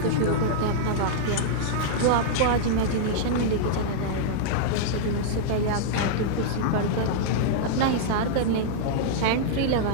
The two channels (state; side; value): different; both; correlation -0.02